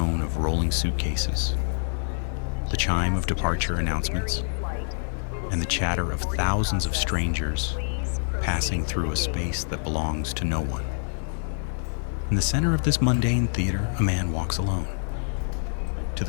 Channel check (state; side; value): silent; right; digital silence